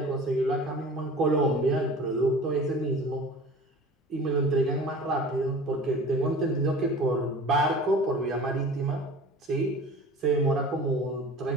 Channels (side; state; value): both; normal; correlation 0.41